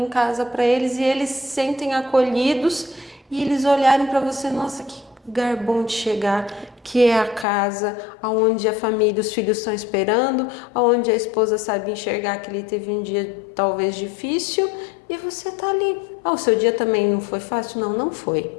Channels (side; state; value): right; drops out; at 7.5 s